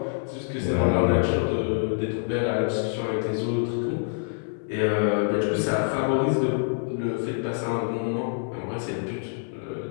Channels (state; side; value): silent; right; digital silence